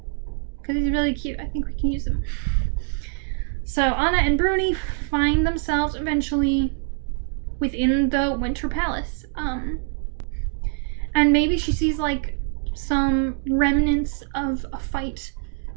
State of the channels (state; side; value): silent; left; 56 dB below the other